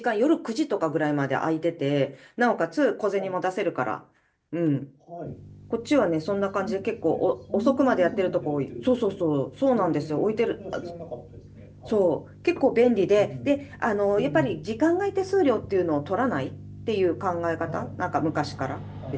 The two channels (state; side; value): identical; both; correlation 1.00